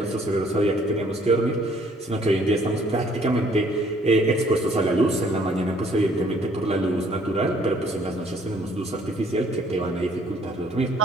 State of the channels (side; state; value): both; normal; correlation 0.62